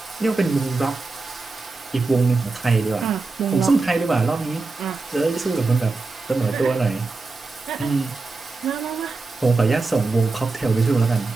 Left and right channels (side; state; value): left; quieter; 3.7 dB